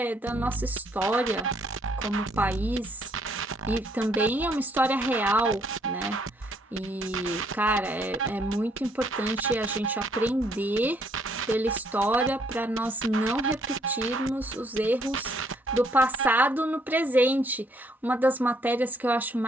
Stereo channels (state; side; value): normal; both; correlation 0.68